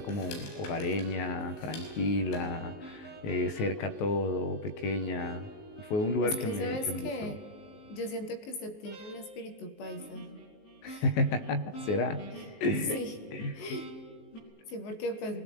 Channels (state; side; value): late; right; 19 ms